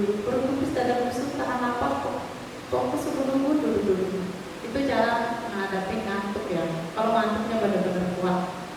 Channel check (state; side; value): identical; both; correlation 1.00